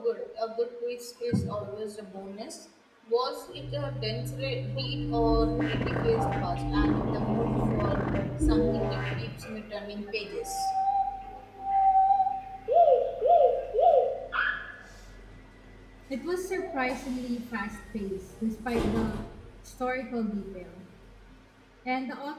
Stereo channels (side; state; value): both; identical; correlation 1.00